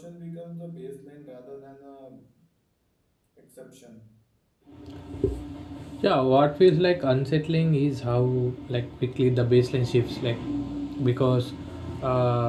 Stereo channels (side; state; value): both; identical; correlation 1.00